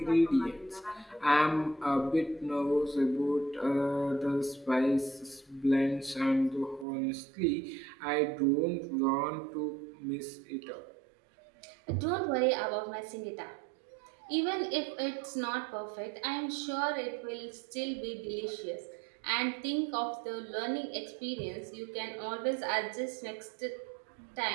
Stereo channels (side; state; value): left; drops out; at 6.9 s